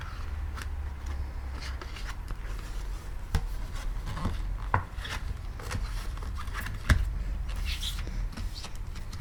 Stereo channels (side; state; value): both; identical; correlation 1.00